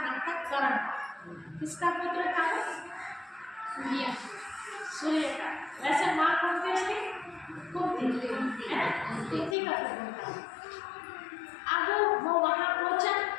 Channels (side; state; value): right; drops out; at 9.6 s